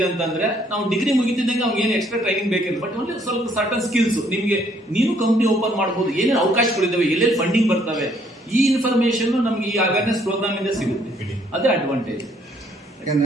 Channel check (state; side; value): normal; both; correlation 0.66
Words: ಅಂತಂದ್ರೆ, ನಾವು ಡಿಗ್ರಿ ಮುಗಿತಿದ್ದಂಗೆ ಅವ್ನಿಗೆ ಏನು ಎಕ್ಸ್ಟ್ರಾ ಟ್ರೈನಿಂಗ್ ಬೇಕಿಲ್ಲ, ಬಟ್ ಓನ್ಲಿ ಸ್ವಲ್ಪ ಸರ್ಟನ್ ಸ್ಕಿಲ್ಸ್ ನಿಮ್ಗೆ ನೀನು ಕಂಪ್ನಿ ಓಪನ್ ಮಾಡಬಹುದು, ಏನೇನು ಅವಕಾಶಗಳಿದ್ದಾವೆ, ಎಲ್ಲೆಲ್ಲಿ ಫಂಡಿಂಗ್ ಬರ್ತವೆ, ಈ ಇನ್ಫಾರ್ಮೇಶನ್ ನಮ್ಗೆ ಈ ಅವೇರ್ನೆಸ್ ಪ್ರೋಗ್ರಾಮ್ ಇಂದ ಸಿಗುತ್ತೆ. ಅದೇ ಅಡ್ವಾಂಟೇಜ್.